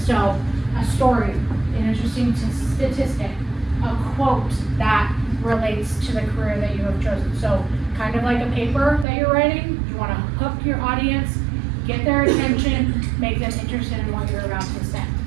So a story, an interesting statistic, a quote that relates to the career that you have chosen. So kind of like a paper that you're writing, you want to hook your audience, get their attention, make them interested in what you're about to say.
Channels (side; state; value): left; drops out; at 9.1 s